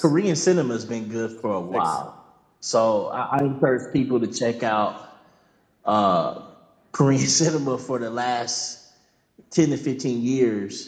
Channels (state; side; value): identical; both; correlation 1.00